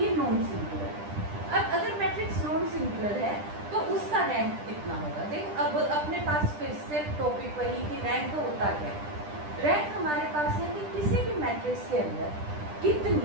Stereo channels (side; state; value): left; late; 10 ms